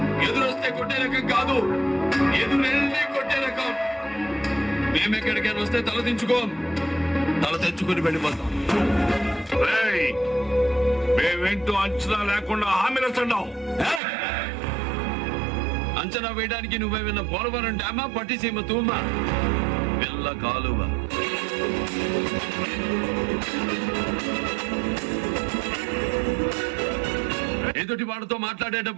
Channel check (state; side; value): drops out; left; at 14.0 s